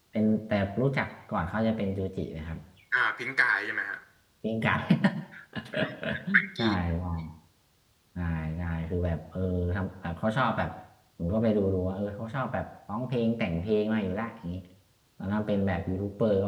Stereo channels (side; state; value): both; identical; correlation 1.00